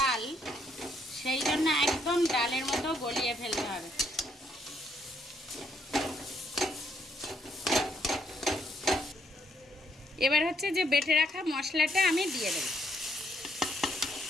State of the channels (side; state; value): both; normal; correlation 0.72